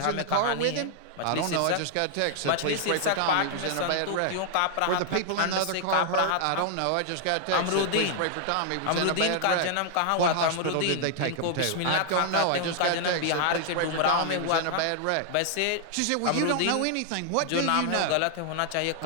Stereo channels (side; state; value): both; different; correlation 0.00